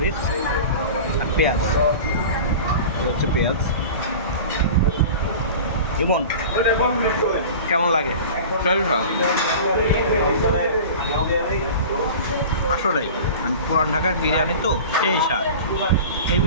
আর পেঁয়াজ। হচ্ছে পেঁয়াজ। ইমন, কেমন লাগে? আসলেই মানে পুরান ঢাকার বিরিয়ানি তো সেই স্বাদ,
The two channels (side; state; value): both; inverted; correlation -0.36